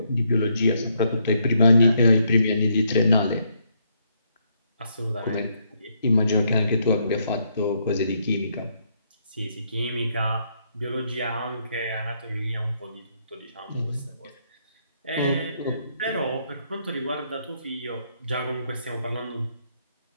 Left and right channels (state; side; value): inverted; both; correlation -0.74